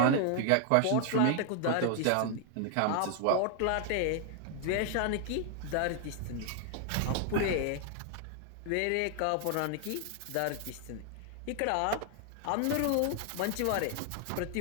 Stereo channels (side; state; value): both; different; correlation 0.00